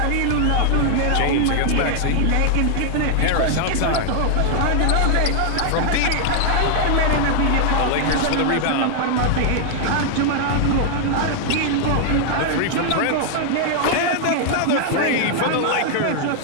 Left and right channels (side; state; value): both; different; correlation 0.00